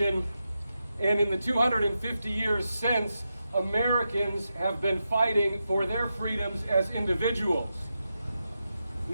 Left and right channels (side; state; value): both; inverted; correlation -0.88